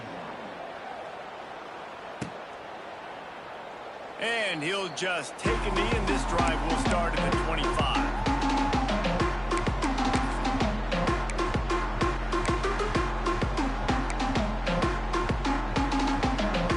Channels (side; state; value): both; identical; correlation 1.00